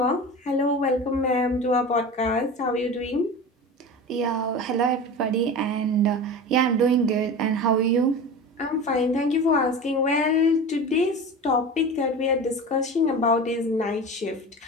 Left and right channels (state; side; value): normal; both; correlation 0.31